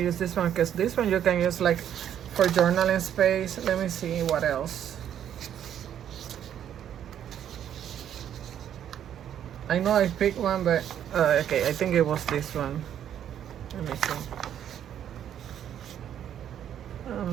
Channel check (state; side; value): quieter; left; 9.9 dB